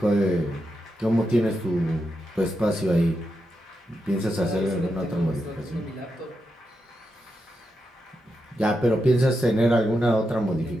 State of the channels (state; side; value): normal; both; correlation 0.86